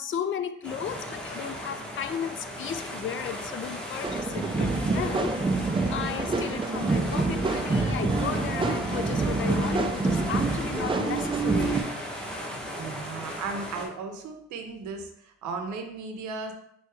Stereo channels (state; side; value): normal; both; correlation 0.59